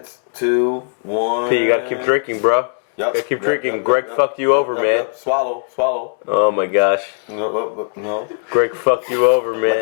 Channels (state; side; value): silent; right; digital silence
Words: 2, 1. Hey, you gotta keep drinking, bro. Yep. Gotta keep drinking. Greg fucked you over, man. Swallow. Oh my gosh. No. Greg fucked you over,